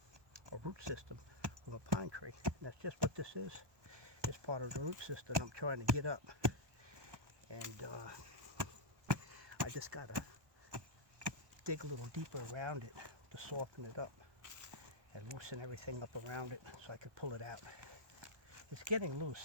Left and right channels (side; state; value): left; late; 1.1 ms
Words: root system from a pine tree. And that's just what this is. It's part of the root system I'm trying to get up. And I just gotta dig a little deeper around it to soften it up and loosen everything up around it so I can pull it out. It's getting